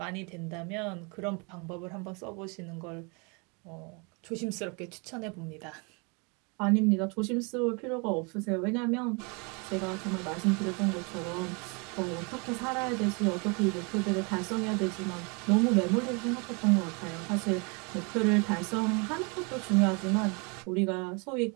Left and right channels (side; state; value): left; quieter; 32.0 dB